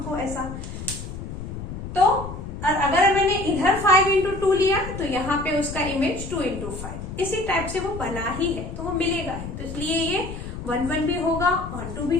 ऐसा। तो और अगर मैंने इधर 5 into 2 लिया तो यहाँ पे उसका इमेज 2 into 5, इसी टाइप से वो बना ही है, तो वो मिलेगा ही। तो इसलिए ये 1 1 भी होगा, ऑन टू भी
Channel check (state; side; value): noise; left; rumble, 8 dB below the sound